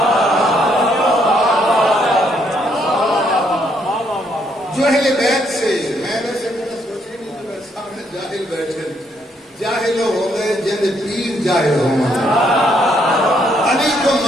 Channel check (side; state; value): both; normal; correlation 0.72